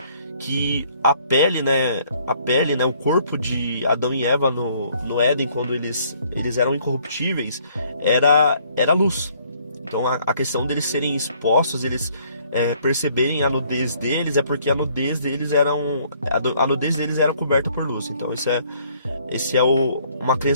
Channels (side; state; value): both; inverted; correlation -0.63